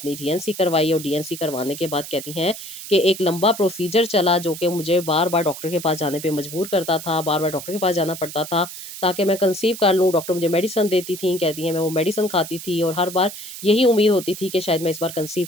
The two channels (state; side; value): noise; right; hiss, 11 dB below the sound